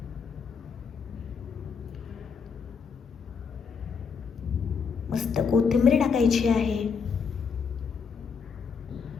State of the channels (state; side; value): quieter; right; 5.8 dB